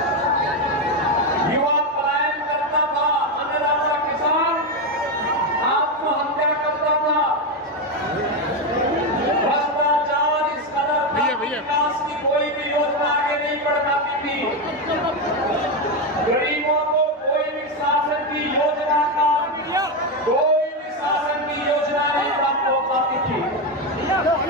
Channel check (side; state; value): both; normal; correlation 0.09